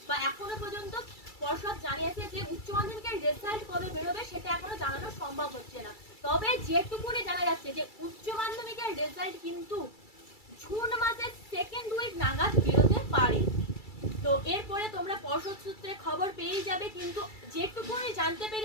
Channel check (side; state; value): right; late; 2.3 ms